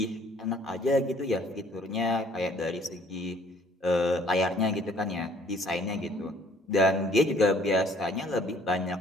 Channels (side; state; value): both; normal; correlation 0.58